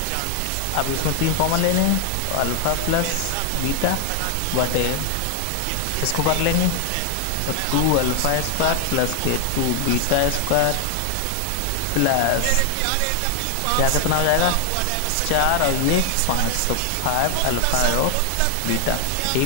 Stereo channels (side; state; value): both; different; correlation 0.00